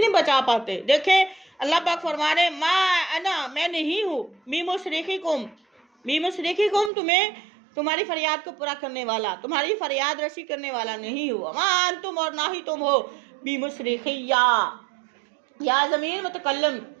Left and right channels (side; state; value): left; drops out; at 6.9 s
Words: بچا پاتے۔ دیکھیں اللہ پاک فرما رہے ما انا، میں نہیں ہوں، مصرخکم تمہاری فریاد کو پورا کرنے والا، تمہاری فریاد رسی کرنے والا نہیں ہوا، ما انتم اور نہ ہی تم ہو بمصرخیہ، یا ضمیر متکلم،